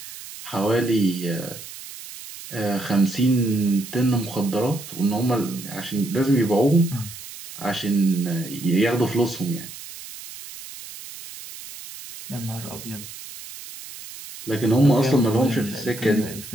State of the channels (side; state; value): right; noise; hiss, 14 dB below the sound